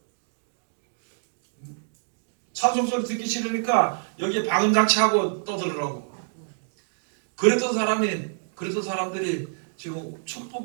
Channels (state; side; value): silent; left; digital silence